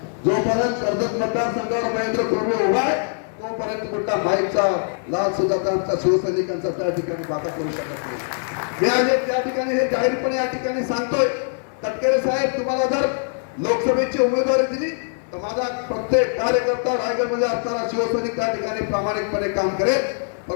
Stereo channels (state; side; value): silent; right; 62 dB below the other